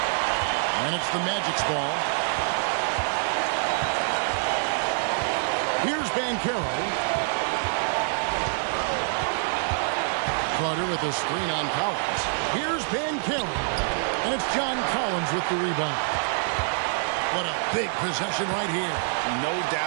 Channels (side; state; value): left; silent; digital silence